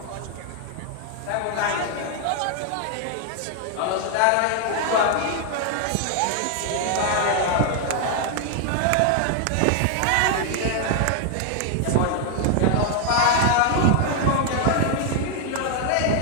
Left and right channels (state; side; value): different; both; correlation 0.00